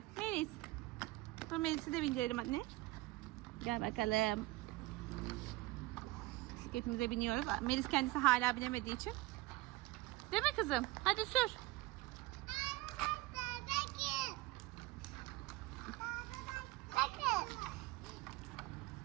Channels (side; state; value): left; quieter; 19.9 dB